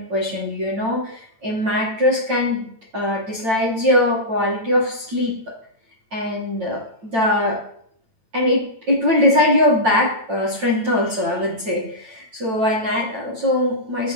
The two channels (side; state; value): left; late; 9.0 ms